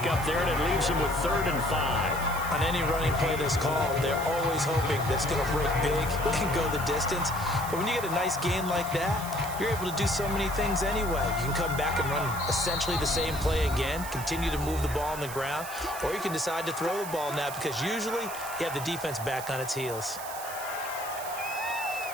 there, and it leaves him with 3rd and 5. On any running play that's called, they're always hoping that it's going to break big and go the distance. But when you get a nice gain like that, you're able to do so many things anyway. You can come back and run essentially the same play again, continue to move the ball on the ground, or you can decide to throw the ball now because usually you have the defense back on its heels.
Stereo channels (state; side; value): noise; right; hiss, 11 dB below the sound